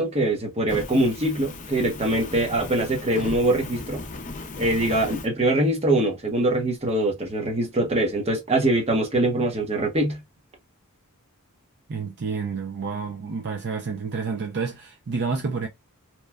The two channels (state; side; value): normal; both; correlation 0.36